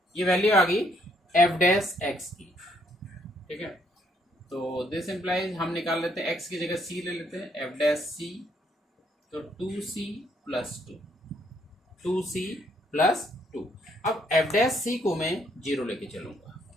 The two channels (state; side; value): normal; both; correlation 0.70